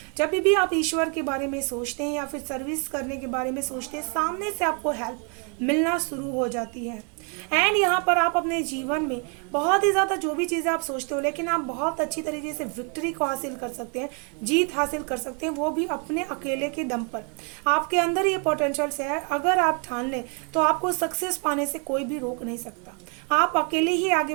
जब भी आप ईश्वर के बारे में सोचते हैं या फिर सर्विस करने के बारे में सोचते हैं, सामने से आपको हेल्प मिलना शुरू हो जाती है, एंड यहाँ पर आप अपने जीवन में बहुत ही ज़्यादा जो भी चीज़ें आप सोचते हो, लेकिन आप बहुत अच्छी तरीके से विक्ट्री को हासिल कर सकते हैं, जीत हासिल कर सकते हैं, वो भी अपने अकेले के दम पर। आपके अंदर ये पोटेंशियल है, अगर आप ठान लें तो आपको सक्सेस पाने से कोई भी रोक नहीं सकता। आप अकेले ही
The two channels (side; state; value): left; quieter; 37.6 dB